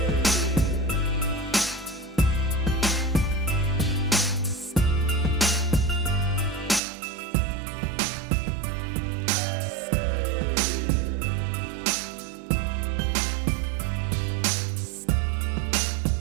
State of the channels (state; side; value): drops out; left; at 6.8 s